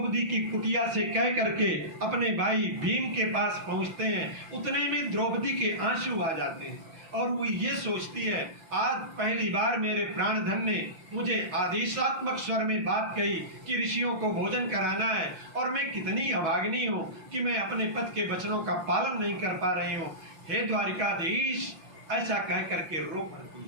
की कुटिया से कह करके अपने भाई भीम के पास पहुंचते हैं, उतने में द्रौपदी के आंसू आ जाते हैं और वो ये सोचती है आज पहली बार मेरे प्राणधन ने मुझे आदेशात्मक स्वर में बात कही कि ऋषियों को भोजन कराना है, और मैं कितनी अभागिनी हूँ कि मैं अपने पति के वचनों का पालन नहीं कर पा रही हूँ। हे द्वारिकाधीश, ऐसा कह करके रो पड़ती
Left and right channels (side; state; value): left; late; 6.2 ms